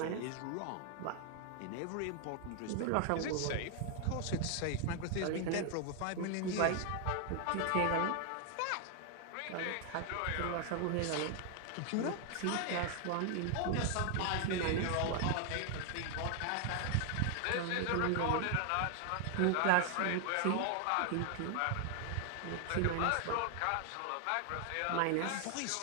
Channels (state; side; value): different; both; correlation 0.00